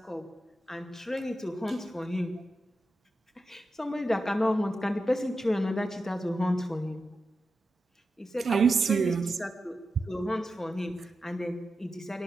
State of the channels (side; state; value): both; normal; correlation 0.90